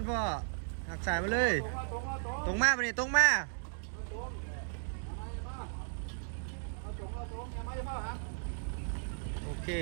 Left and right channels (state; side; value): silent; left; digital silence